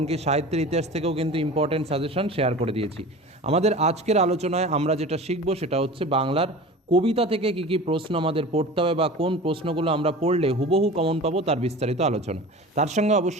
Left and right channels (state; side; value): normal; both; correlation 0.36